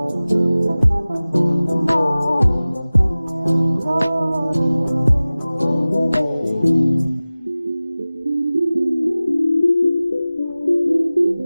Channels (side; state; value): both; inverted; correlation -0.97